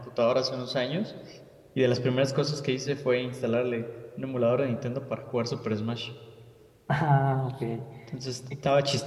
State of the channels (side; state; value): both; identical; correlation 1.00